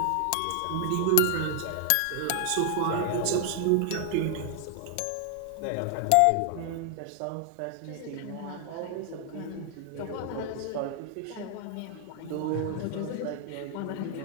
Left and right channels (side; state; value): both; different; correlation 0.00